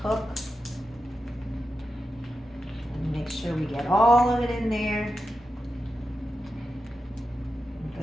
cook. And make sure we get all of it in there.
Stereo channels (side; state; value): both; normal; correlation 0.90